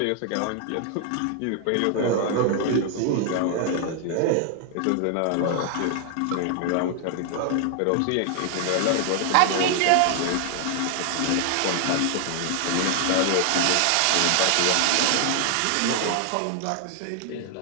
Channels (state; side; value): different; both; correlation 0.00